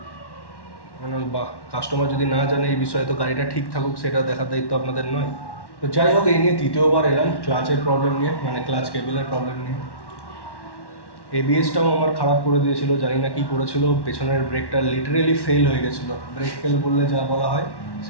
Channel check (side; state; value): right; late; 1.1 ms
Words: মানে বাহ, কাস্টমার যদি না জানে এই বিষয়ে, তো গাড়িটা ঠিক থাকুক সেটা দেখার দায়িত্ব আপনাদের নয়। তো যাই হোক, এই নিয়ে তৃতীয়বার এলাম ক্লাচের প্রবলেম নিয়ে, মানে ক্লাচ কেবেলের প্রবলেম নিয়ে। এবিএসটাও আমার খারাপ করে দিয়েছিল, জানি না কী করেছিল। পেছনের ব্রেকটা লিটারেলি ফেল হয়ে গেছিলো। ব্রেক ফেল বললে যা বলা হয়